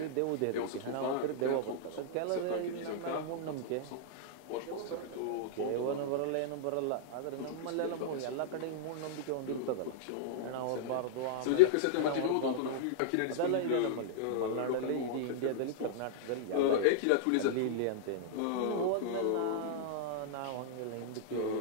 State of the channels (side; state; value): both; different; correlation -0.02